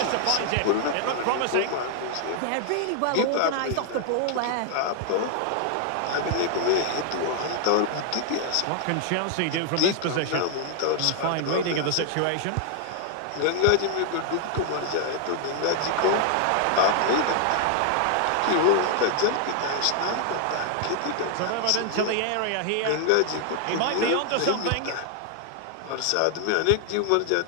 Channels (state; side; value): different; both; correlation 0.00